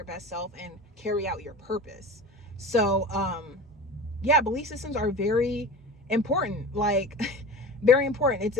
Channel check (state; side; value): normal; both; correlation 0.34